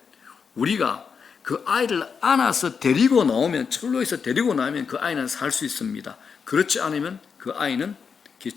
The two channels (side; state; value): right; quieter; 6.0 dB